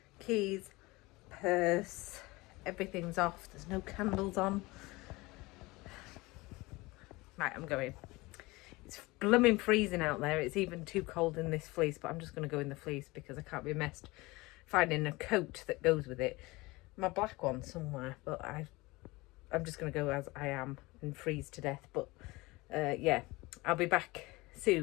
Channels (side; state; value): right; quieter; 22.1 dB